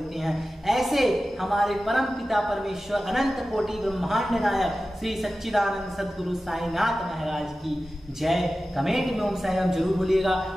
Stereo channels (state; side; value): normal; both; correlation 0.95